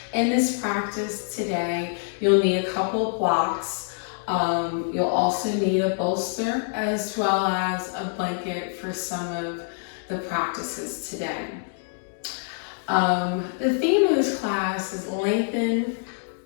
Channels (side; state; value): right; silent; digital silence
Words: In this practice today, you'll need a couple blocks. You'll also need a bolster as well as a blanket for some of the practices today. The theme of this class is lengthen,